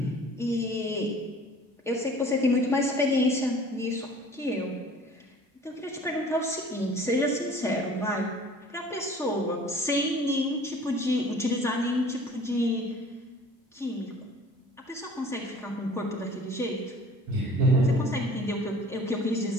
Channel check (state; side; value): normal; both; correlation 0.48